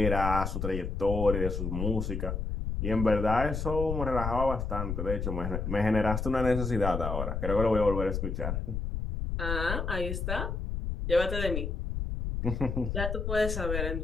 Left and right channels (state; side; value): noise; left; rumble, 3 dB below the sound